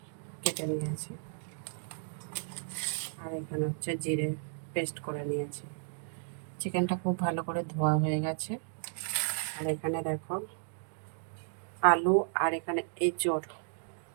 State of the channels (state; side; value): silent; left; digital silence